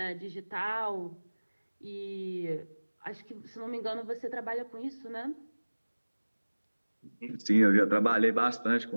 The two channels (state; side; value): inverted; both; correlation -1.00